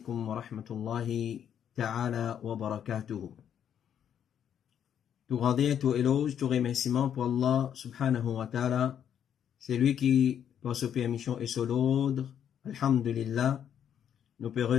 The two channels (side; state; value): right; quieter; 9.1 dB